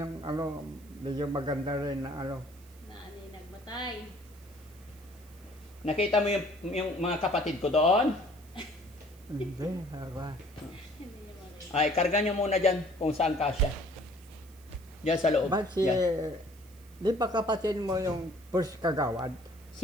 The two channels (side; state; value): right; noise; hiss, 26 dB below the sound